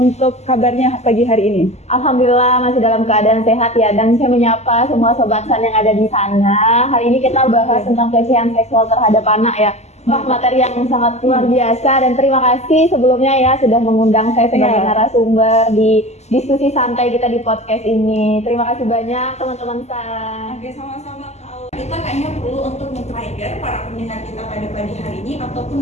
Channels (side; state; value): right; late; 0.32 ms